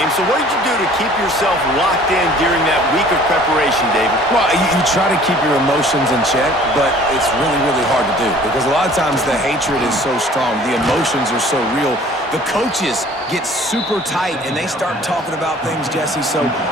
so what did you do to keep yourself locked in during that week of preparation, David? Well, you try to keep your emotions in check, but it's really, really hard to do because a lot of times the hatred is so strong. The emotions are so real. The coaches get super tight, and they start talking about things, Jesse, so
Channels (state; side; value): normal; both; correlation 0.51